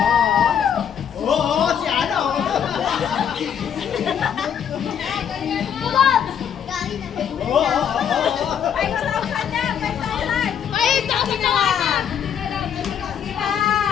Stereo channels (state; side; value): quieter; right; 8.5 dB